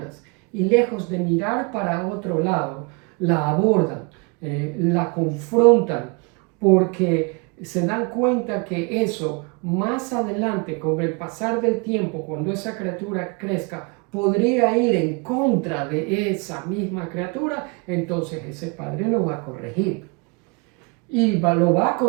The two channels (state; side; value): quieter; left; 30.8 dB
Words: y lejos de mirar para otro lado, la abordan, la confrontan, porque se dan cuenta que eso más adelante, con el pasar del tiempo, cuando esa criatura crezca, podría ir en contra de esa misma criatura, entonces ese padre lo va a corregir. Y lo va a